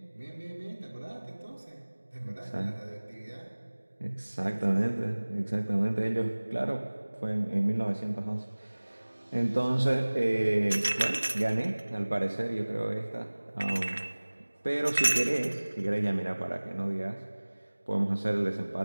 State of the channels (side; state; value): both; inverted; correlation -1.00